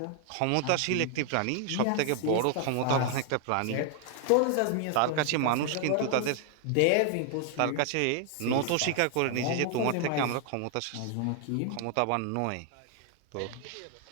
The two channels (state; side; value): different; both; correlation 0.00